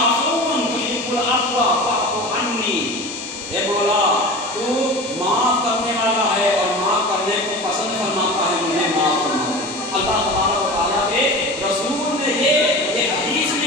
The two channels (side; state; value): both; normal; correlation 0.33